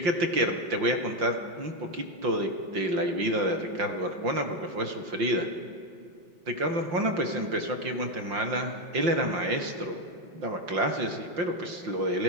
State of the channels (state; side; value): late; left; 5.7 ms